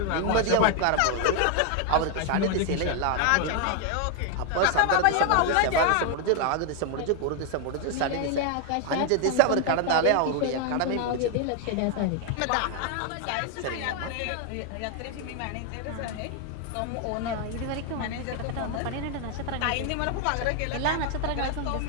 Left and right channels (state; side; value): different; both; correlation 0.00